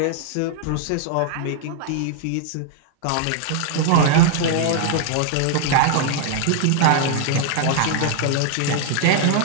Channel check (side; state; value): both; different; correlation 0.00